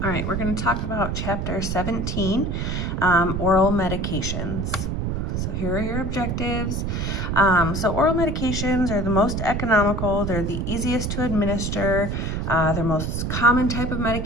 All right, we're going to talk about chapter 17, oral medications. So here are your objectives. So oral medications are the most economical, they're the easiest to administer, they're most common type of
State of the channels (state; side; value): noise; right; rumble, 1 dB below the sound